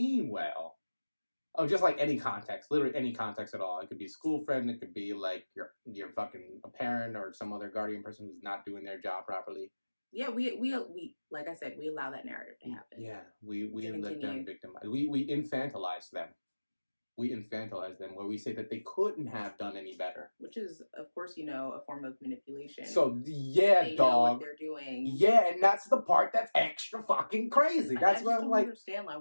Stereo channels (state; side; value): inverted; both; correlation -1.00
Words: well. Oh, just like any context, literally any context at all. It could be a school friend. It could be like your fucking a parent or some other guardian person who's not doing their job properly. Yeah, we like I said, we allow that narrative to happen. Yeah, we let them victimize. We infantilize them. We infantilize them, where we say that they couldn't have done any better. Which is, of course, a form of manipulation. So yeah, they know what they're doing. Yeah, and that's the part that's extra fucking crazy. That's why I'm like, I understand like